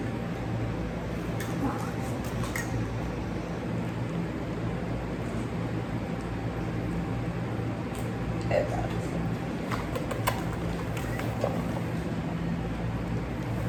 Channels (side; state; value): both; identical; correlation 1.00